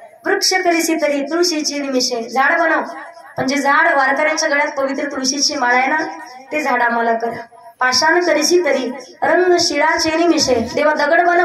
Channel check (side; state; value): both; identical; correlation 1.00